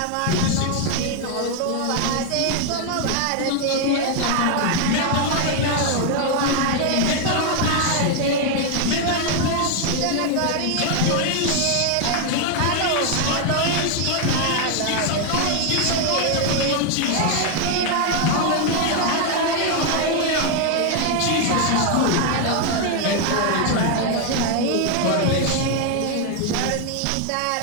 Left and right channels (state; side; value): different; both; correlation 0.01